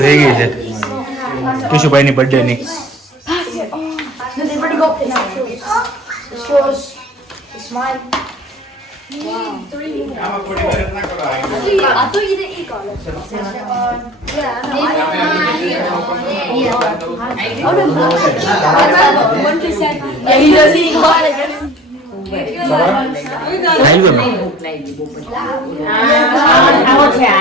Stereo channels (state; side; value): normal; both; correlation 0.44